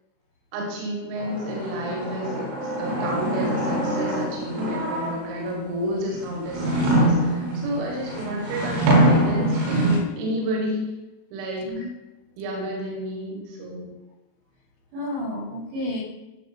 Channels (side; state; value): left; late; 36 ms